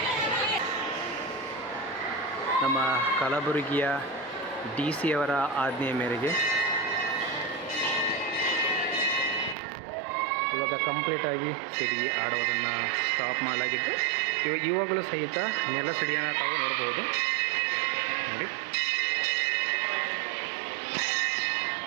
ನಮ್ಮ ಕಲಬುರಗಿಯ DC ಅವರ ಆಜ್ಞೆಯ ಮೇರೆಗೆ ಇವಾಗ ಕಂಪ್ಲೀಟಾಗಿ ಸಿಡಿ ಆಡೋದನ್ನು ಸ್ಟಾಪ್ ಮಾಡಲಾಗಿದ್ದು, ಇವಾಗಲೂ ಸಹಿತ ನೆಲ ಸಿಡಿಯನ್ನು ತಾವು ನೋಡ್ಬೋದು. ನೋಡಿ,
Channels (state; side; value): drops out; left; at 9.6 s